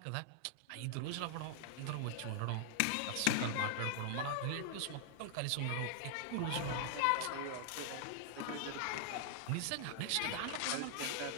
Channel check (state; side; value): different; both; correlation 0.00